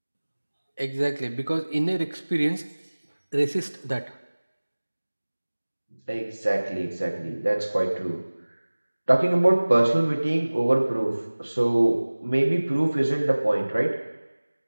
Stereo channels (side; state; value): both; inverted; correlation -1.00